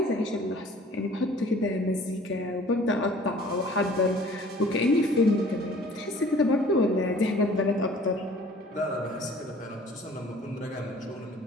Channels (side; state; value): both; normal; correlation 0.51